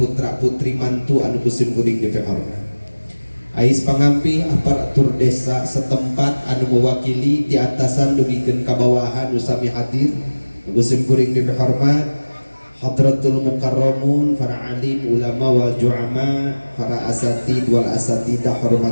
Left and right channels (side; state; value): both; inverted; correlation -1.00